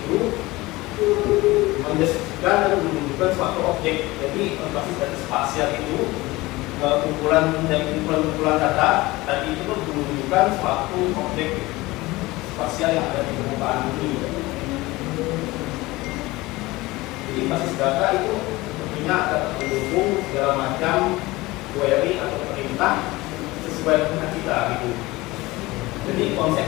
mendeskripsikan dan menunjukkan suatu objek. Jadi basis data spasial itu kumpulan dari kumpulan data tadi itu menunjukkan suatu objek spasial yang ada di permukaan bumi. Jadi basis data itu tentunya dapat mendukung segala macam query atau perintah sesuai dengan kita gitu. Jadi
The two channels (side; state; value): right; quieter; 20.4 dB